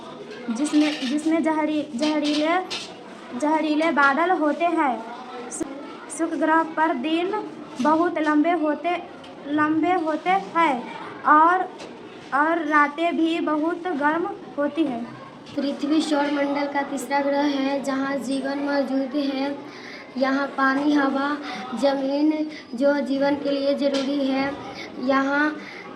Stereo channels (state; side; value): identical; both; correlation 1.00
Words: जिसमें जहरीले बादल होते हैं। शुक्र ग्रह पर दिन बहुत लंबे होते हैं और रातें भी बहुत गर्म होती हैं। पृथ्वी सौरमंडल का तीसरा ग्रह है जहाँ जीवन मौजूद है। यहाँ पानी, हवा, जमीन जो जीवन के लिए ज़रूरी है। यहाँ